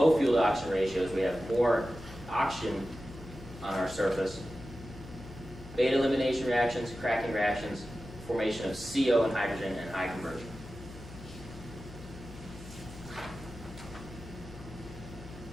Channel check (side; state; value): left; noise; hum, 15 dB below the sound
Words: fuel to oxygen ratios, we have more oxygen on our surface, beta elimination reactions, cracking reactions, formation of CO and hydrogen, and high conversion.